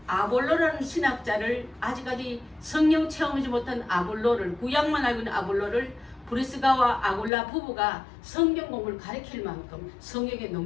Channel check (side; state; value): right; drops out; at 7.3 s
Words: 아볼로라는 신학자를 아직까지 성령 체험하지 못한 아볼로를 구약만 알고 있는 아볼로를 브리스가와 아굴라 부부가 성경 공부를 가르칠 만큼 성경에